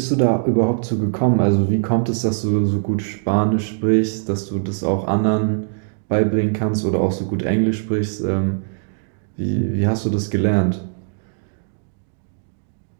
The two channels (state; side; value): silent; left; digital silence